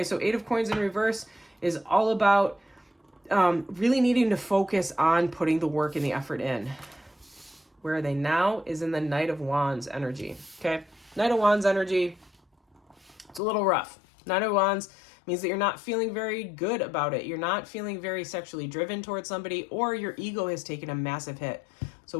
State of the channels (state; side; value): drops out; right; at 13.4 s